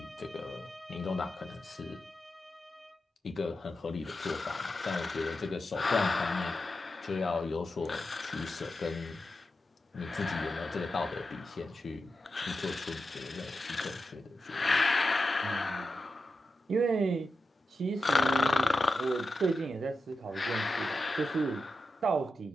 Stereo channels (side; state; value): both; normal; correlation 0.90